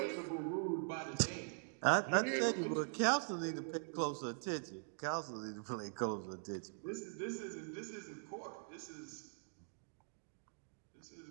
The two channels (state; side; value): silent; left; digital silence